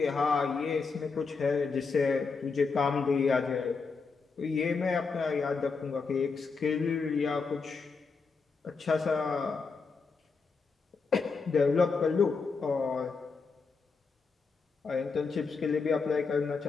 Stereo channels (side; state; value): right; quieter; 4.7 dB